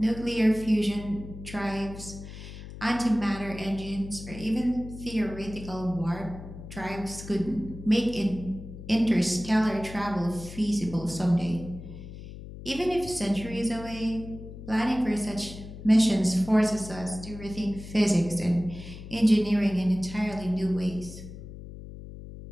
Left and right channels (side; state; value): left; noise; hum, 13 dB below the sound